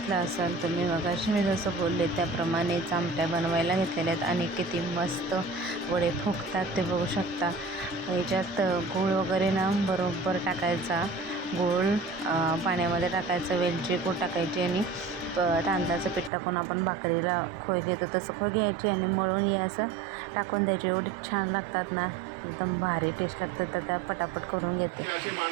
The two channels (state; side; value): drops out; left; at 16.3 s